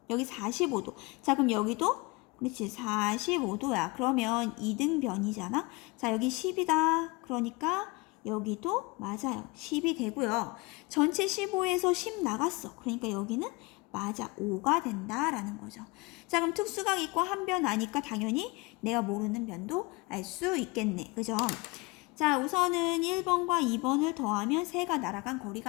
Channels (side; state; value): right; quieter; 25.1 dB